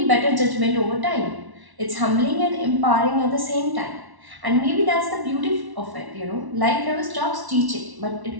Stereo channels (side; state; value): left; late; 1.1 ms